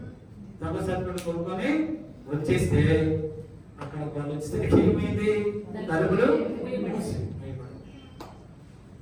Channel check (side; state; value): both; identical; correlation 1.00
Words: దొంగ సర్టిఫికెట్ కొనుక్కొని వచ్చేస్తే అక్కడ వాళ్ళు వచ్చేసరికి ఏమైంది? తలుపులు